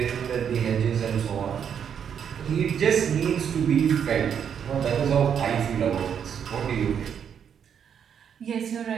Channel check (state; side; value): quieter; left; 8.0 dB